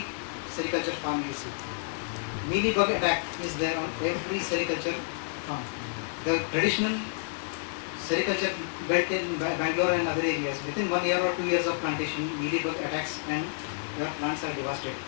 sericulture farm you see. Mealybug attack is there on every sericulture farm. The traditional sericulture belt in Bangalore and other areas, within 1 year or 2 years of plantation, mealybug attacks and your plants are devastated.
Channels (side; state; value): right; silent; digital silence